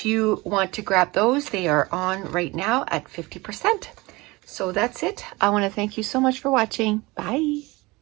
you want to grab those, they are on right now at 50%. So that's it. I want to thank you so much for watching. Bye.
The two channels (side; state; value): left; quieter; 22.6 dB